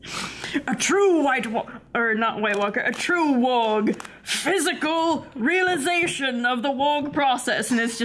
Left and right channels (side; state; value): both; identical; correlation 1.00